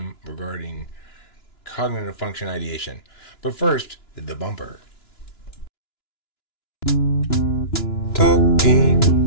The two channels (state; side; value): late; right; 2.9 ms